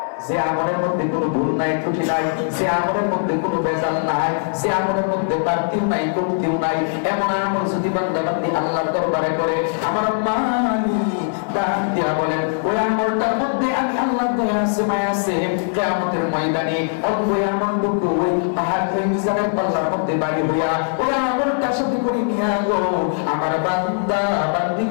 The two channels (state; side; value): silent; right; digital silence